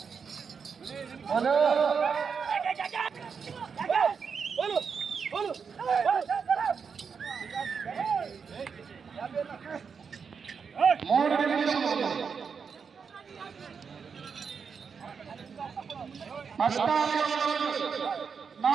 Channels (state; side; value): quieter; left; 6.0 dB